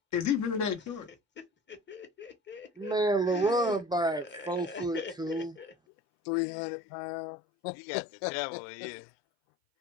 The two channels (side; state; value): right; drops out; at 5.8 s